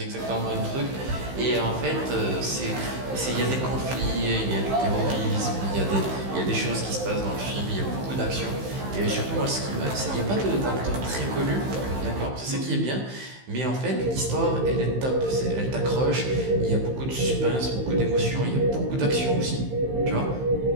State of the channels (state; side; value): late; left; 15 ms